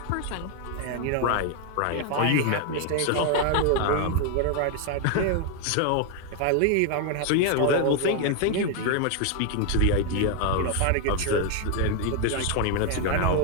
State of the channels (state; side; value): different; both; correlation 0.01